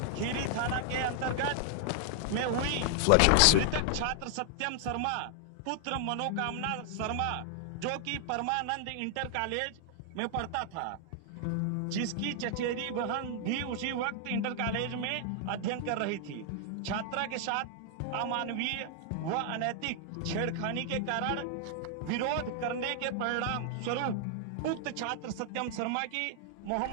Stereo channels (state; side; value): different; both; correlation 0.00